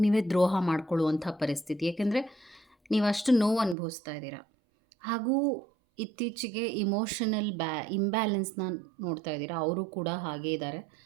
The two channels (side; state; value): left; drops out; at 3.8 s